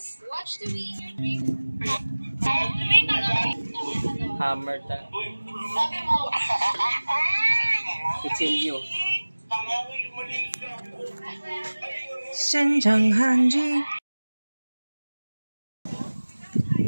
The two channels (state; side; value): inverted; both; correlation -1.00